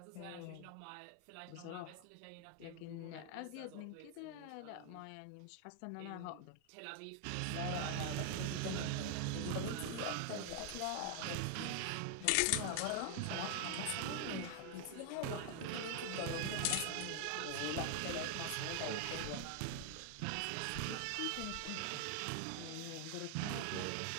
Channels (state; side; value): different; both; correlation 0.00